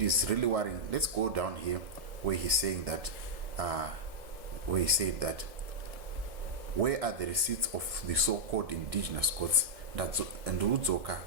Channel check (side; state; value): left; late; 1.7 ms